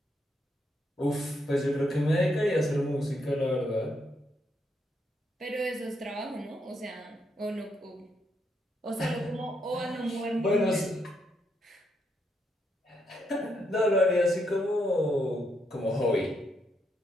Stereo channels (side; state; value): both; normal; correlation 0.77